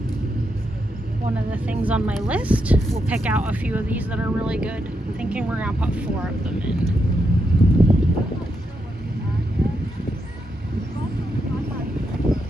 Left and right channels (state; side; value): normal; both; correlation 0.83